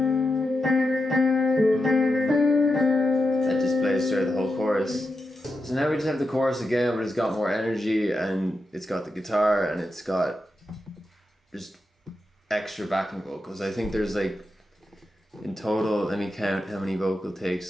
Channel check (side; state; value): both; normal; correlation 0.88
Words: That just plays through the whole chorus. So now we just have the chorus again, but it's got more energy and it's got the guitar and it's got just extra backing vocals. I think there's like, in total, let me count how many vocal